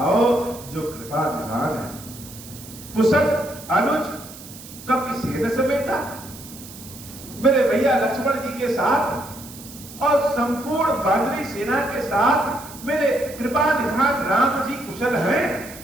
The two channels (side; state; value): right; noise; hiss, 16 dB below the sound